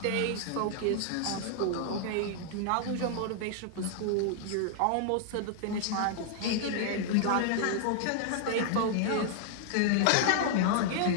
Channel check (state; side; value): different; both; correlation -0.01